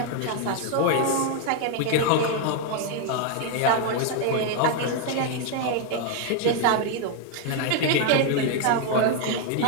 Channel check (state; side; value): different; both; correlation 0.00